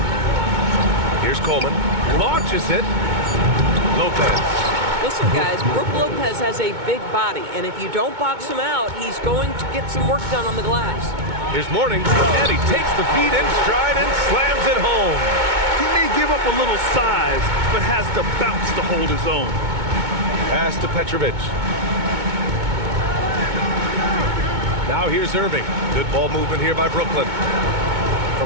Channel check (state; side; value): late; left; 2.2 ms